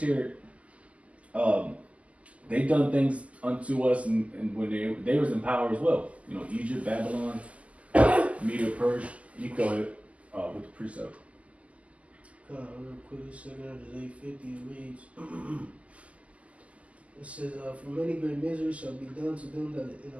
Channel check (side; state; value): left; late; 0.067 ms